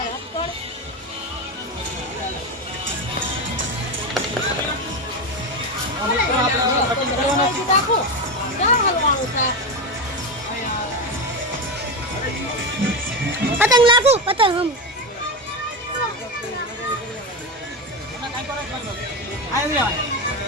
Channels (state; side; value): normal; both; correlation 0.16